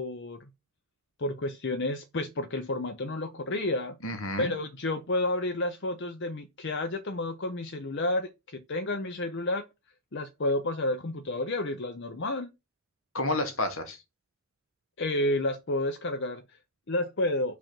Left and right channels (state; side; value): normal; both; correlation -0.19